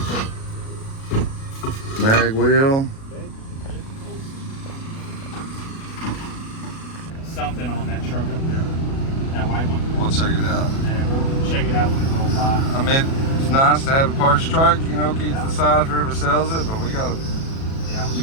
Mag wheel. Something on that truck up there, that white one. We'll check it out. And we'll check it out when it rolls by. I mean, it's nice to have a parts truck, you know, keep to the side for whoever sells it, but we gotta,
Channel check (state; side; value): late; right; 37 ms